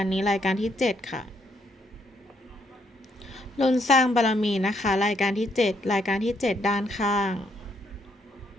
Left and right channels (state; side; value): normal; both; correlation 0.73